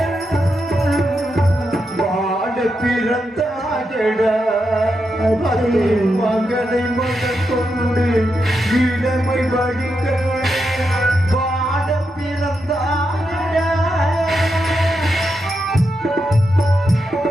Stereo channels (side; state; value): both; normal; correlation 0.85